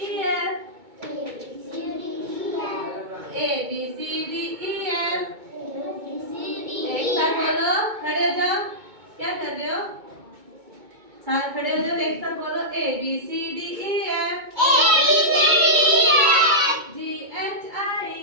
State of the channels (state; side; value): late; left; 2.2 ms